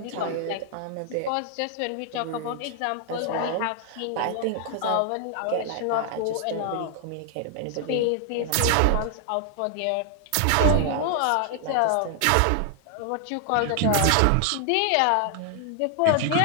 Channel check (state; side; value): different; both; correlation 0.00